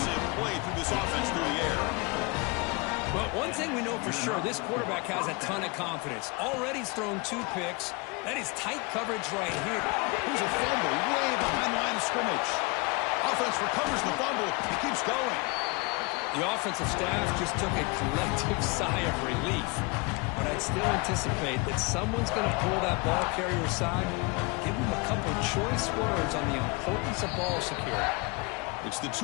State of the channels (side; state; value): right; quieter; 28.1 dB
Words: play through this offense through the air. Well, one thing we know for sure, this quarterback has a ton of confidence. Already he's thrown 2 picks, That is tight coverage right here. Here's a fumble way behind the line of scrimmage. Offense recovers the fumble. It keeps going. The offensive staff just took a collective sigh of relief. But I'd still anticipate that someone's going to pull that ball carrier aside, give him a couple of choice words on the importance of ball security. It's the